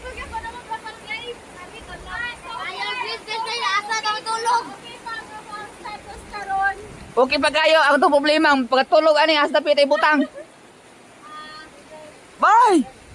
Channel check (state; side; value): identical; both; correlation 1.00